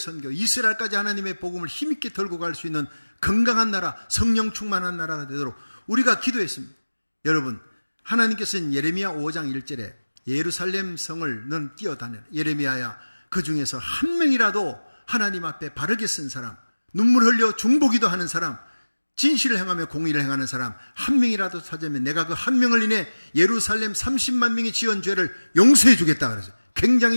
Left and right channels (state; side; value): inverted; both; correlation -1.00